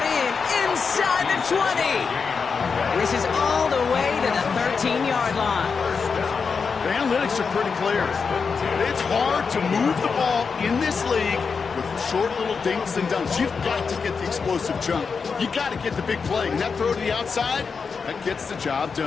in inside the 20. And this is all the way to the 13-yard line. The analytics are pretty clear. It's hard to move the ball in this league with short little dinks and dunks. You've got to get the explosive jump. You got to get the big play. And that throw to the outside, that gets the job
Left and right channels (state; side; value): quieter; right; 5.4 dB